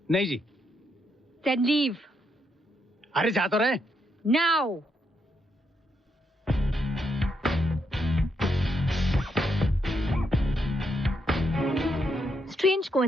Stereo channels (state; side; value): normal; both; correlation 0.79